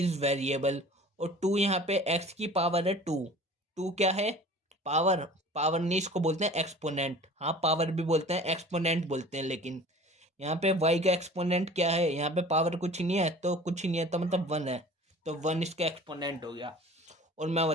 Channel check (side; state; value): both; normal; correlation 0.43